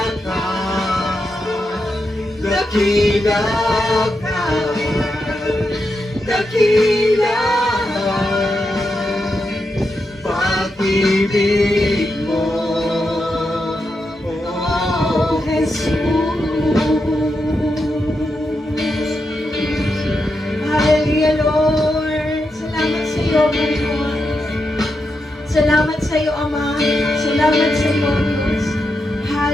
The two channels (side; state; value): both; normal; correlation 0.86